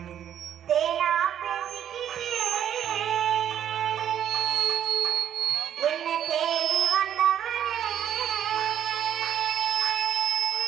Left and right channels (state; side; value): quieter; left; 10.0 dB